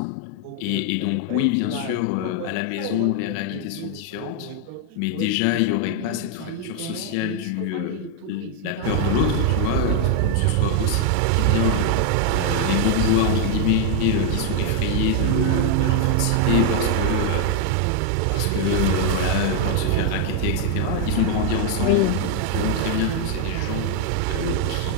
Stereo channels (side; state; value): both; different; correlation 0.00